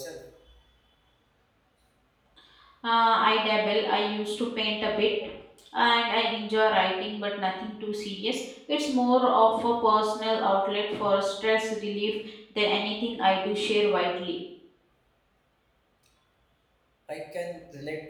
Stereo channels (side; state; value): both; identical; correlation 1.00